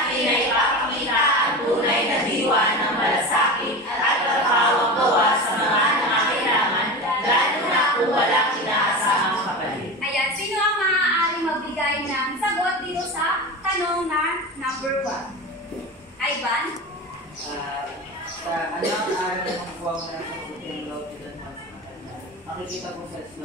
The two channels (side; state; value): both; normal; correlation 0.26